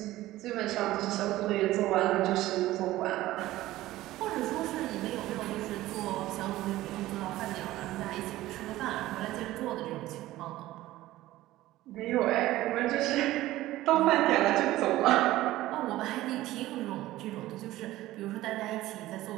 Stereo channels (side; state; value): left; quieter; 16.2 dB